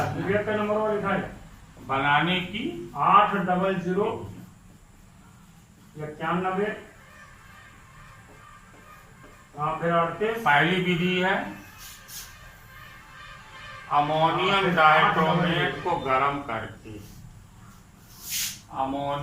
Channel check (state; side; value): identical; both; correlation 1.00